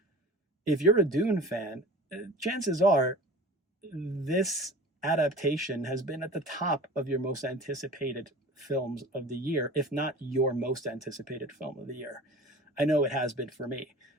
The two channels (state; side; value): normal; both; correlation 0.39